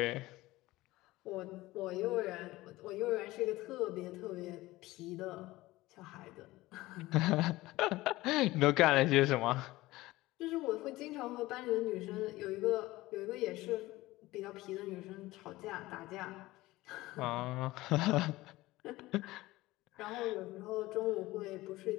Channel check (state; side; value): quieter; right; 18.6 dB